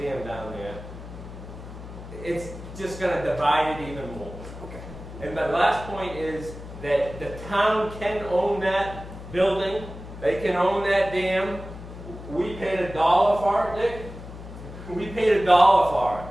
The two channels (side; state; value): left; noise; hum, 13 dB below the sound